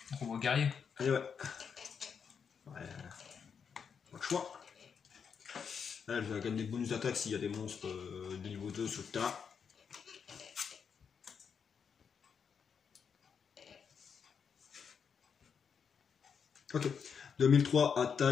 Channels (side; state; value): right; quieter; 6.7 dB